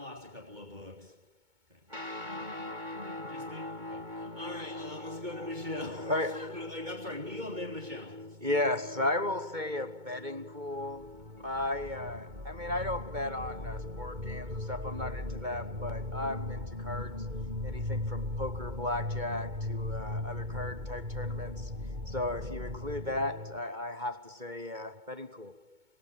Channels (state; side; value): late; left; 2.2 ms